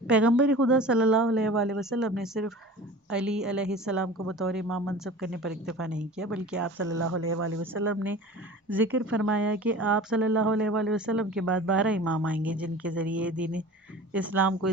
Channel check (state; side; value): normal; both; correlation 0.39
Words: پیغمبر خدا صلی اللہ علیہ وآلہ وسلم نے صرف علی علیہ السلام کو بطور امام منصب کرنے پر اکتفا نہیں کیا، بلکہ آپ صلی اللہ علیہ وآلہ وسلم نے ذکر فرمایا کہ آپ صلی اللہ علیہ وآلہ وسلم کے بعد 12 امام آئیں گے جن کے ذریعے دین اسلام کو